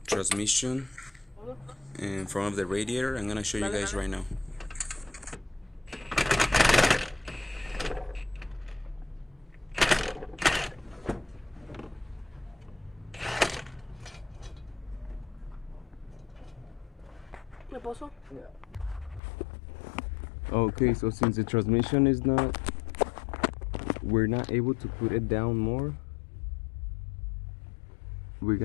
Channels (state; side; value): drops out; right; at 19.2 s